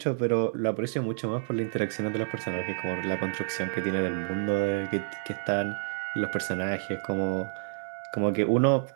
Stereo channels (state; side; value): silent; left; 58 dB below the other